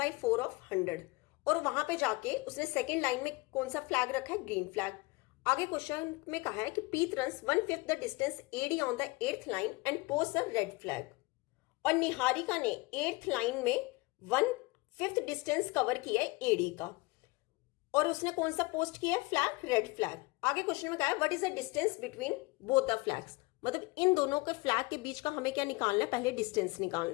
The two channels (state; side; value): quieter; right; 24.1 dB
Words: ऑफ 100, और वहां पे जाके उसने सेकेंड लाइन में कौन सा फ्लैग रखा है ग्रीन फ्लैग। आगे क्वेश्चन में कहा है कि पीत runs 1/5 the distance AD on the 8th line and post a red flag, और निहारिका ने 8th लाइन में 1/5 डिस्टेंस कवर किया है AD का, और उसने कौन सा पोस्ट किया है फ्लैग रेड फ्लैग। आगे क्वेश्चन में कहा है what is the distance between both the flags, मतलब इन दोनों के फ्लैग के बीच का हमें क्या निकालना है, पहले डिस्टेंस